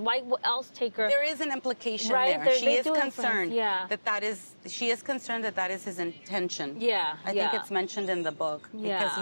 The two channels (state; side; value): inverted; both; correlation -1.00